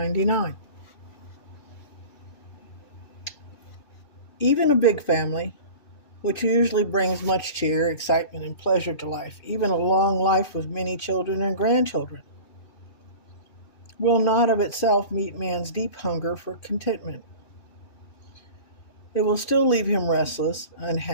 Even a big family, which usually brings much cheer, excitement, and pleasure to life, even a long life with many children and grandchildren, will not of itself meet man's deep hunger for contentment. It will still leave him restless,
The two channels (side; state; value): right; late; 2.5 ms